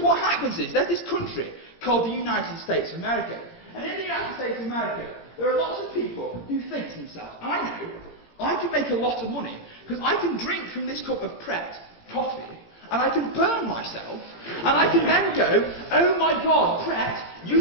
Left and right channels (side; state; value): right; late; 17 ms